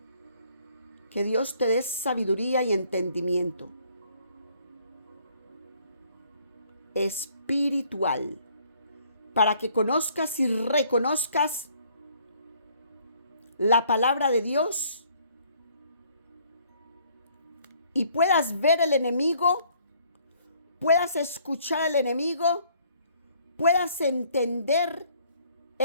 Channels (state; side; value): inverted; both; correlation -0.63